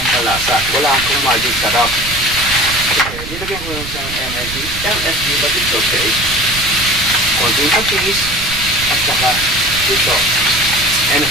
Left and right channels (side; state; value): right; noise; rumble, 11 dB below the sound